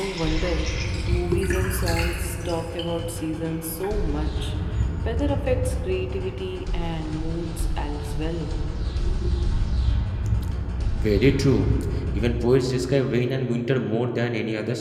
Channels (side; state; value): both; identical; correlation 1.00